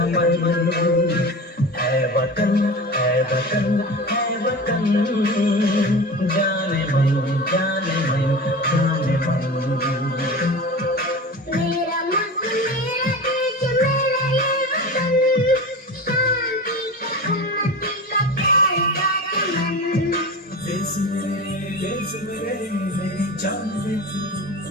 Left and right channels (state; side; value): normal; both; correlation 0.31